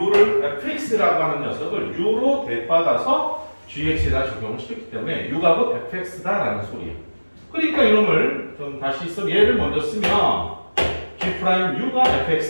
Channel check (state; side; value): inverted; both; correlation -1.00